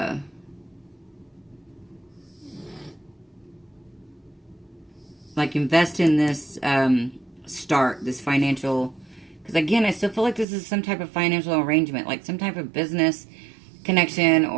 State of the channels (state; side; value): drops out; left; at 10.5 s